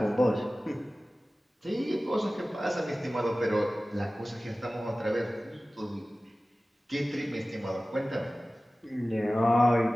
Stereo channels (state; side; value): normal; both; correlation 0.97